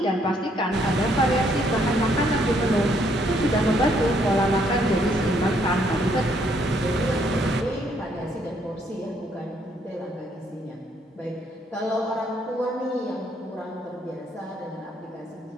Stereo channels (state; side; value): normal; both; correlation 0.70